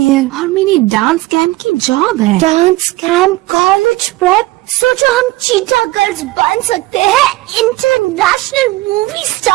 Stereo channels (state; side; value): quieter; left; 19.2 dB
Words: है और मेरी डांस कैंप की जॉब है. Dance camp, college prep. सोचो हम चीटा गर्ल्स बन सकते हैं, इंटरनेशनल मूवी